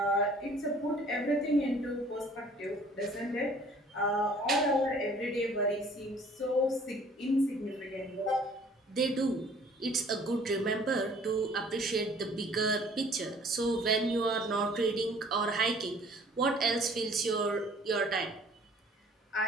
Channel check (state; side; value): normal; both; correlation 0.54